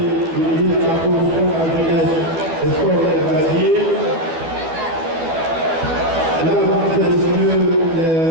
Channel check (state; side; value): late; left; 12 ms